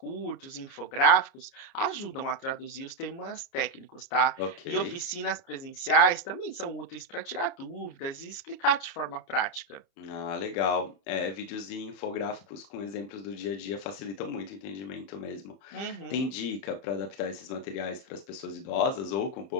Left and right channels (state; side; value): late; right; 30 ms